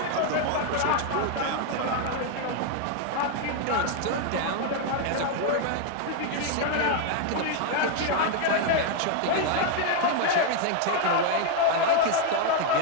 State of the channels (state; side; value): different; both; correlation 0.00